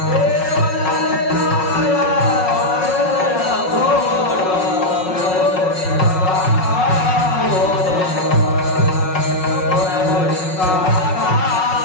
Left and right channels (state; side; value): late; right; 5.4 ms